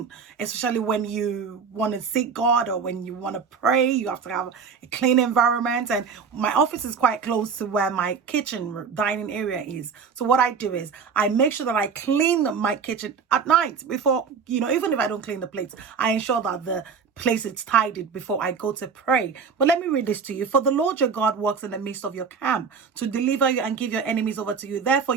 especially when you want to seek God or when you want to pray. You have to have a clean environment, and my office is quite close to where my kitchen dining area is. So what I do is I make sure that I clean my kitchen at night before, even if I don't clean the plates, I ensure that the place is tidied before I go to pray. But let me read this to you. For the Lord your God walks in the midst of your camp to deliver you and give your enemies over to you. Therefore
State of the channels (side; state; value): left; quieter; 5.9 dB